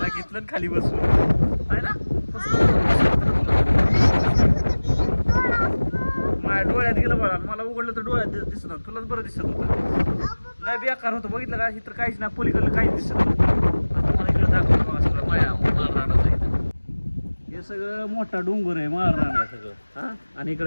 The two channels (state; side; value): inverted; both; correlation -1.00